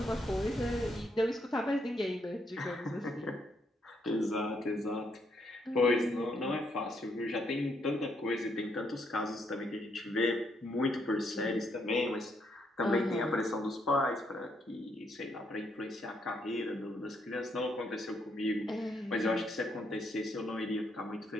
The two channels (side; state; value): both; normal; correlation 0.75